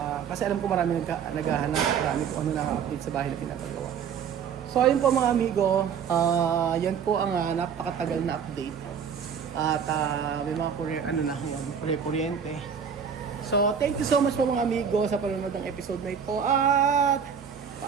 kasi alam ko marami naghahanap, marami kung ano na-update sa bahay na pinapagawa. So ayun po mga amigo, yan po ang napakatagal na update. At may mga kuryente. So thank you so much po mga amigo sa panonood ng episode na ito. At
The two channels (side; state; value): left; quieter; 7.3 dB